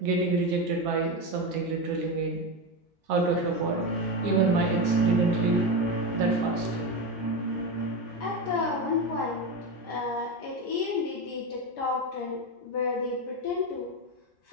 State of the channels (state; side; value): normal; both; correlation 0.16